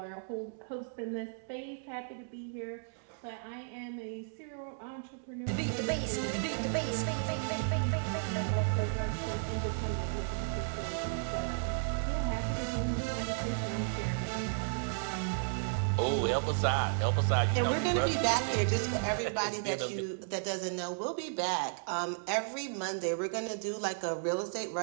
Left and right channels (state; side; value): silent; left; digital silence